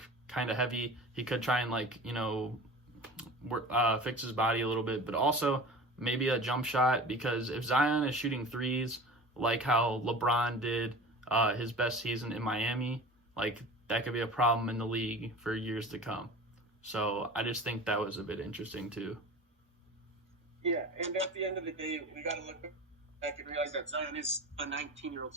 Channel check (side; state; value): both; normal; correlation 0.37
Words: kind of heavy. He could try and, like, fix his body a little bit, but also maybe a jump shot, because if Zion is shooting threes like how LeBron did his best season in Miami, like, that could be a problem in the league for years to come. So I just think that was a bit interesting too. Yeah, and at the end of the day, we got to look back and realize that Zion is a 19-year-old,